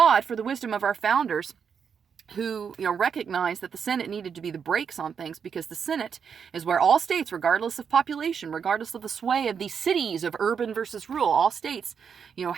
for the wisdom of our founders, who recognized that the Senate needed to be the brakes on things, because the Senate is where all states, regardless of population, regardless of the sway of these cities of urban versus rural, all states,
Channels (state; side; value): quieter; left; 6.8 dB